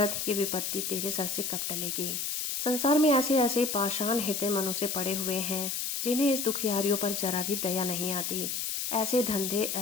ये विपत्ति तेरे सर से कब टलेगी। संसार में ऐसे ऐसे पाषाण हृदय मनुष्य पड़े हुए हैं जिन्हें इस दुखियारियों पर जरा भी दया नहीं आती। ऐसे धंधे,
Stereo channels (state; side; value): noise; left; hiss, 2 dB below the sound